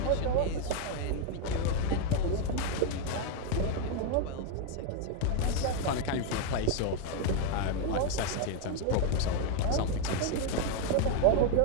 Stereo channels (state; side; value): different; both; correlation 0.01